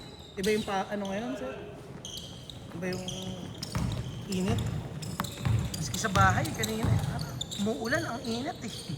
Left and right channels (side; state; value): both; identical; correlation 1.00